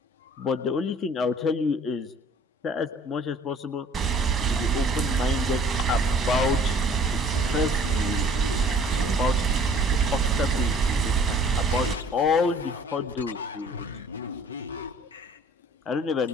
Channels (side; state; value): both; normal; correlation 0.53